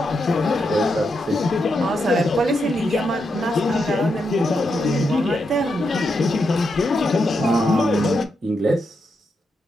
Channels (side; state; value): both; normal; correlation 0.83